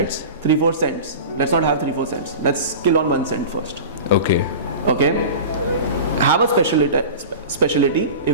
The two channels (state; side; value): inverted; both; correlation -0.33